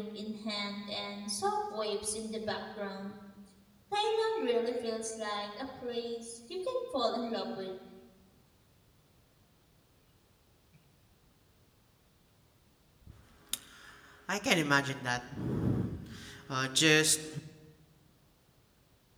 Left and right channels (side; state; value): both; identical; correlation 1.00